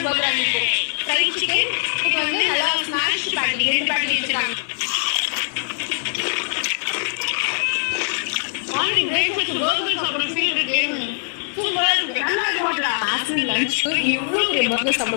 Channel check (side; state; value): right; silent; 57 dB below the other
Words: பர்கர் ஃப்ரைட் சிக்கன். இது வந்து நல்லா ஸ்மாஷ்டு பேட்டி, 2 பேட்டி வச்சிருக்காங்க. மார்னிங் பிரேக்ஃபாஸ்ட் பர்கர் சாப்பிட ஃபீல் இருக்கு. சூப்பரா இருக்கு. ஆஃப்டர்நூன் லஞ்சுக்கு இவ்வளவு பெரிய பர்கர்